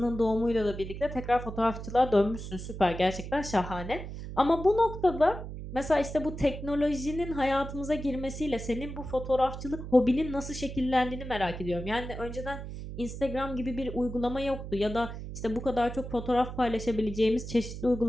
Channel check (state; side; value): noise; right; hum, 9 dB below the sound